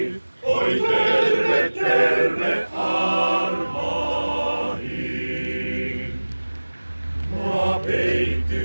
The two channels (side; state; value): both; inverted; correlation -1.00